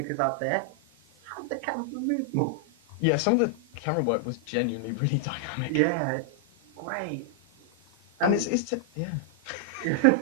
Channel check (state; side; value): normal; both; correlation 0.00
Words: out there. Have the camera move more. Yeah, some of the camera work was genuinely really dynamic. Yeah, it's great. And yeah.